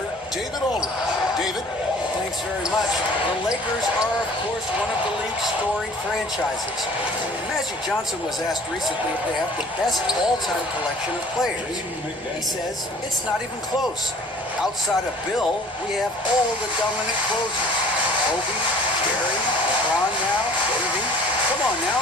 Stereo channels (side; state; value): both; normal; correlation 0.49